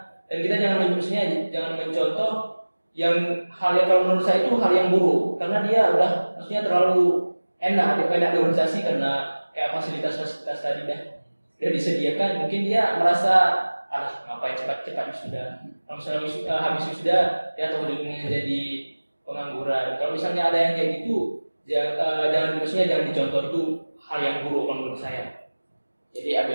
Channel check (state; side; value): inverted; both; correlation -1.00